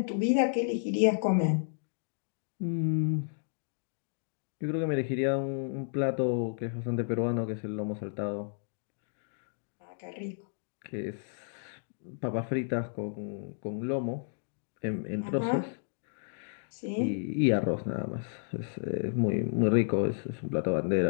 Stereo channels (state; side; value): silent; right; digital silence